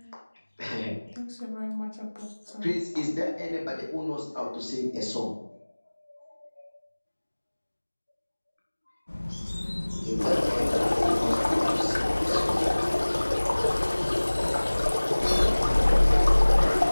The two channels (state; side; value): inverted; both; correlation -1.00